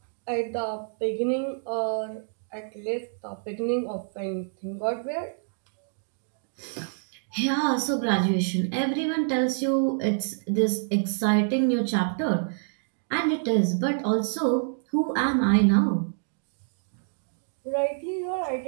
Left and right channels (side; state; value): left; silent; digital silence